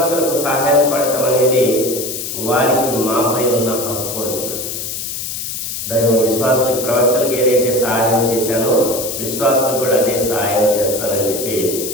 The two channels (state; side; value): noise; left; hiss, 5 dB below the sound